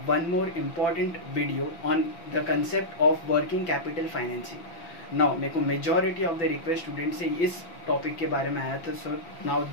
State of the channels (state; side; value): late; right; 6.0 ms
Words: one more important video on the concept of working capital financing. Now मेरे को majority of the request students से इस टॉपिक के बारे में आया था, so now